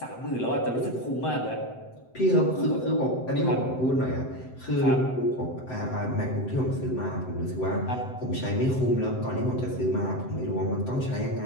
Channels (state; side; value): late; right; 7.8 ms